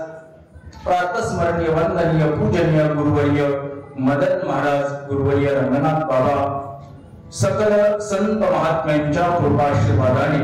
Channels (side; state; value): both; identical; correlation 1.00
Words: प्रातस्मरणीय वंदनीय पूजनीय गुरुवर्य मदन महाराज, गुरुवर्य रंगनाथ बाबा, सकल संत महात्म्यांच्या कृपाशीर्वादाने